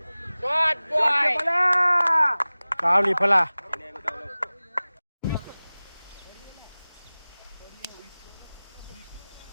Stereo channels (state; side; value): inverted; both; correlation -0.98